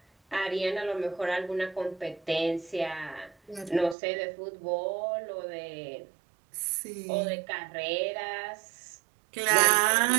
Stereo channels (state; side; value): drops out; left; at 4.0 s